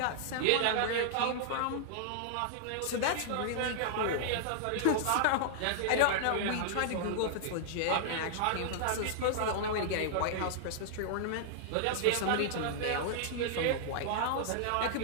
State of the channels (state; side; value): different; both; correlation -0.01